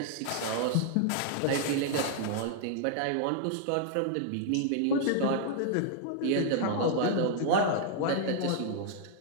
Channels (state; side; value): different; both; correlation 0.00